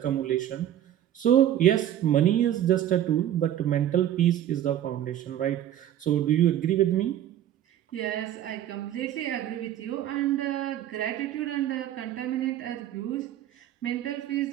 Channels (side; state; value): left; quieter; 11.5 dB